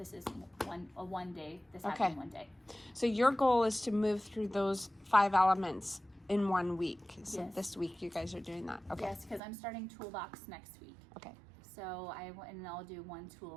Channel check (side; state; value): left; drops out; at 9.4 s